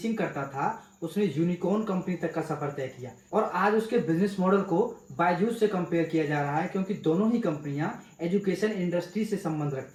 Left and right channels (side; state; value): both; identical; correlation 1.00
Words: करता था, उसने यूनिकॉर्न कंपनी तक का सफर तय किया और आज उसके बिजनेस मॉडल को बायजूस से कंपेयर किया जा रहा है, क्योंकि दोनों ही कंपनियां एजुकेशन इंडस्ट्री से संबंध